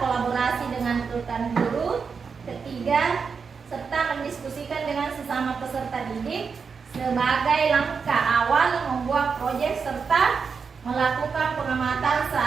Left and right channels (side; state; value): left; quieter; 5.6 dB